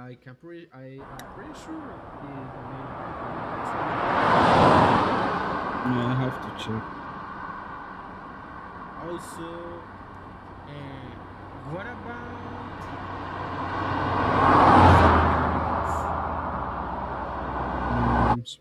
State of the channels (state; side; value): identical; both; correlation 1.00